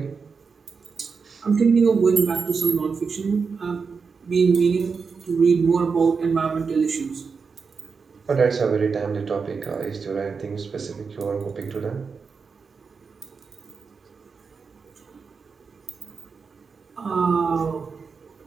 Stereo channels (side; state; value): left; quieter; 5.3 dB